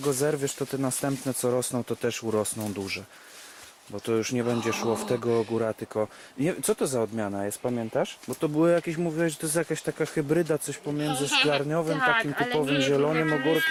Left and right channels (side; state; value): both; identical; correlation 1.00